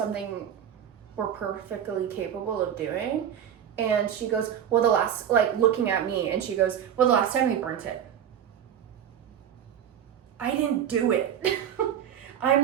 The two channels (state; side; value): quieter; left; 9.3 dB